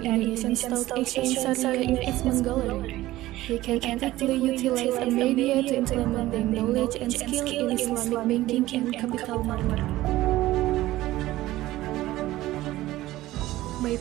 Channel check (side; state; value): left; quieter; 16.4 dB